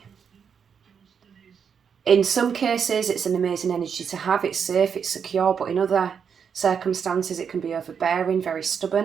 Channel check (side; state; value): left; quieter; 7.0 dB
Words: In some cases, it's an amazing energy to have. It's safe, it's secure, but in other circumstances, it can be overbearing, very